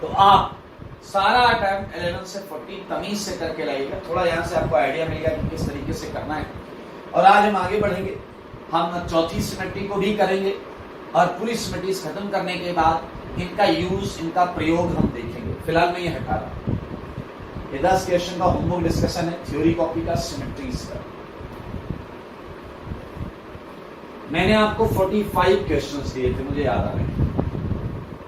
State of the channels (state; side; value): identical; both; correlation 1.00